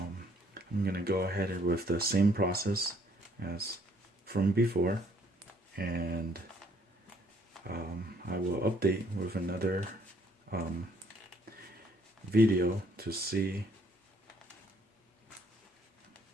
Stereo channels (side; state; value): both; normal; correlation 0.64